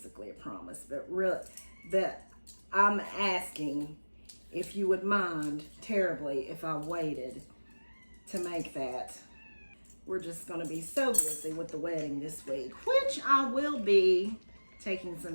a promise. But really, I'm asking if you would mind terribly if I waited to make that. We're just gonna be so busy with the wedding this week, which I will be taking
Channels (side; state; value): both; inverted; correlation -1.00